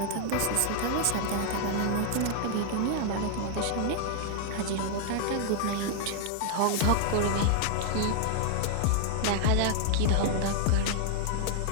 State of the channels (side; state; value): both; different; correlation 0.00